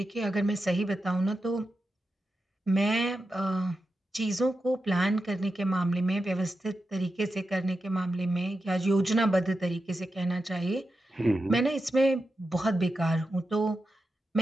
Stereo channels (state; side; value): normal; both; correlation 0.89